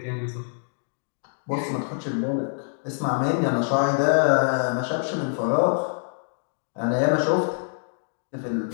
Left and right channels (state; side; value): silent; right; digital silence